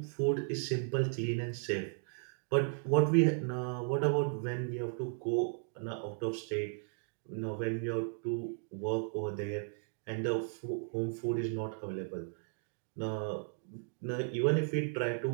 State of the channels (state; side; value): silent; left; 54 dB below the other